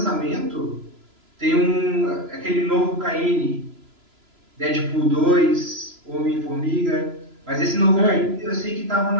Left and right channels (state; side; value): late; left; 3.0 ms